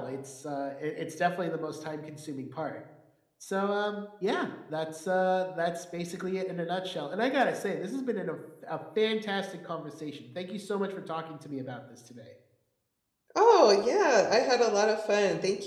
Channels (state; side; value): identical; both; correlation 1.00